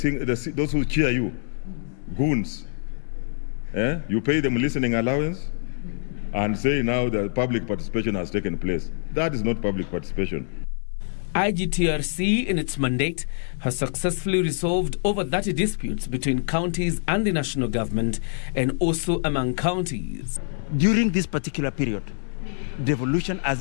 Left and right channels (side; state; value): right; silent; digital silence